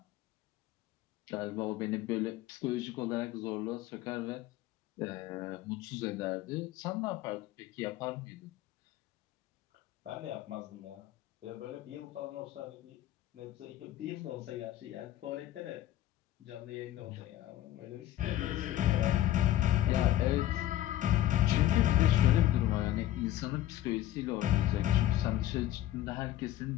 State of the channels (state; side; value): quieter; right; 13.4 dB